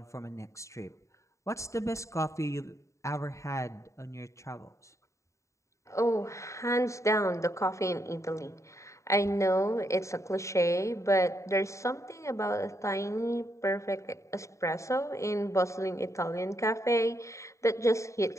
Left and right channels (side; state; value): right; late; 0.14 ms